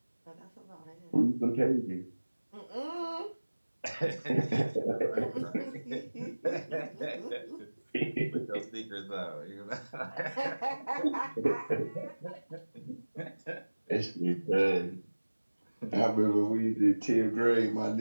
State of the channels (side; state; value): both; inverted; correlation -1.00